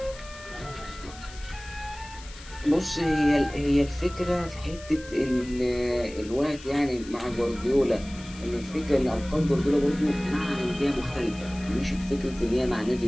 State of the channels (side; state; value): left; noise; hiss, 18 dB below the sound